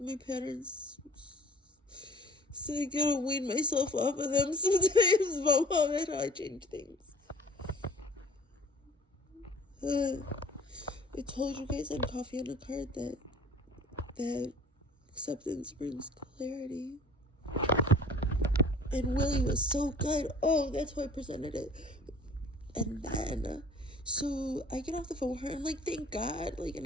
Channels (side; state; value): both; normal; correlation 0.48